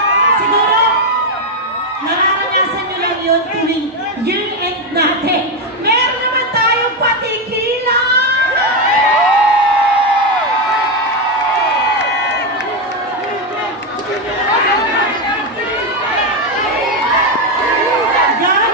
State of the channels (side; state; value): both; normal; correlation 0.07